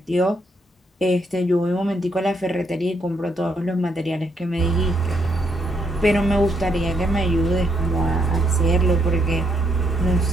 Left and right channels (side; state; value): both; normal; correlation 0.75